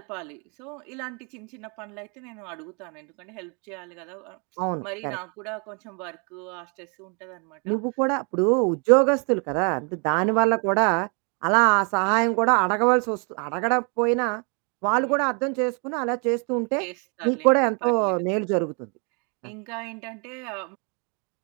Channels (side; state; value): left; quieter; 36.1 dB